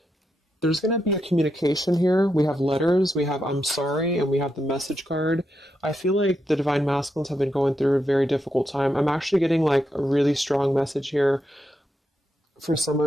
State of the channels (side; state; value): both; normal; correlation 0.84